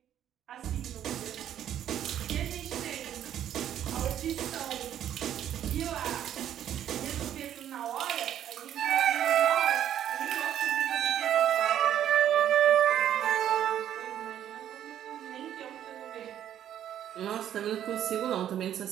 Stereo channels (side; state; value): left; quieter; 10.7 dB